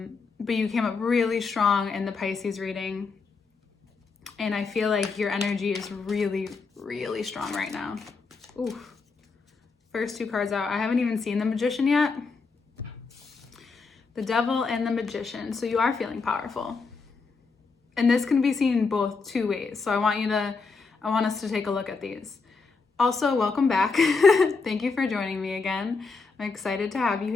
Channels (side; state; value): right; quieter; 4.5 dB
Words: you came up really strong in the Pisces reading, and I feel like your energy is really, really strong right now. Ooh. First two cards out. I haven't even seen the Magician yet. The Devil and the Magician. So you are feeling powerful. And this can be seen both two ways. So I want us to take a look at these. Also, welcome back. Thank you for joining me again. I'm excited to have you